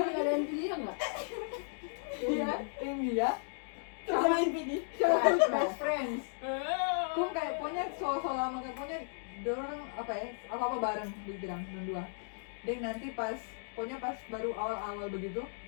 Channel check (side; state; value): right; silent; digital silence